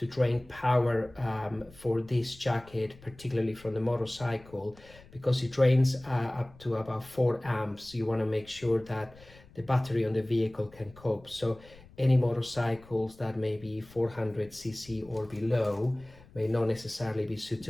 drain power for this jacket, particularly from the motorcycle, because it drains up to about 4 amps. You want to make sure that the battery on the vehicle can cope. So any motorcycles that may be 400cc or below may not necessarily be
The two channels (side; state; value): left; noise; rumble, 23 dB below the sound